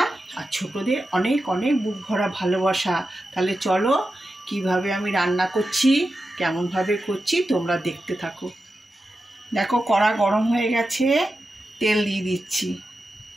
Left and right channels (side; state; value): both; normal; correlation 0.91